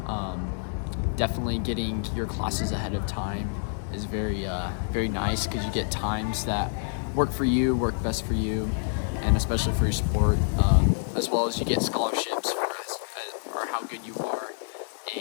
definitely getting your classes ahead of time is very nice because you get times that work for you, work best for you, and especially for your sport, as well as you get scholarships for how good you are,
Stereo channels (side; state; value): right; silent; 60 dB below the other